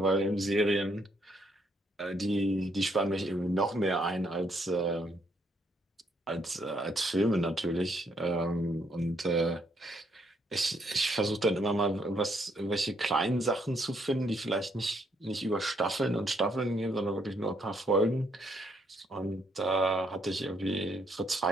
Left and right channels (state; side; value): normal; both; correlation 0.72